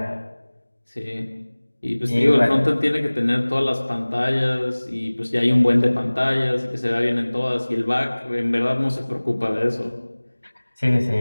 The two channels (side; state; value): both; inverted; correlation -1.00